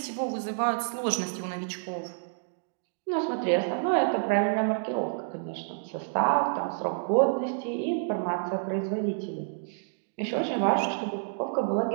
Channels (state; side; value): silent; left; digital silence